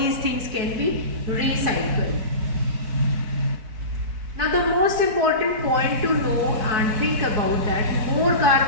things can be recycled. Now the most important point to know and think about that, more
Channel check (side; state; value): left; late; 4.6 ms